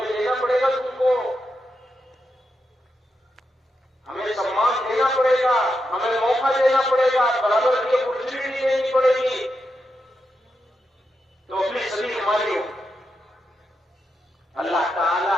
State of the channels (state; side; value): normal; both; correlation 0.86